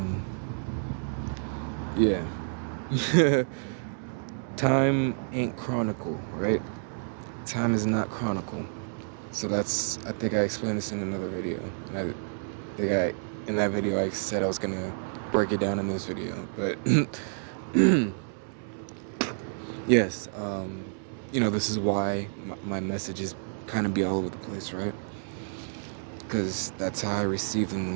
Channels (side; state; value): left; silent; digital silence